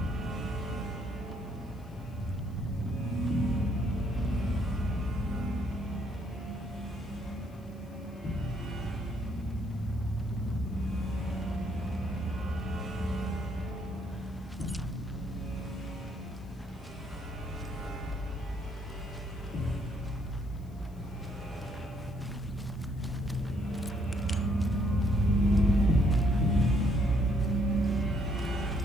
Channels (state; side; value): noise; left; hiss, 30 dB below the sound